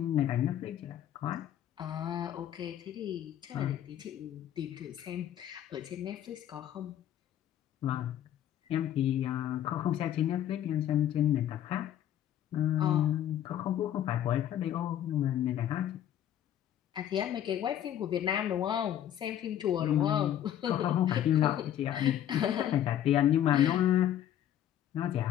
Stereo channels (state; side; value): quieter; right; 11.1 dB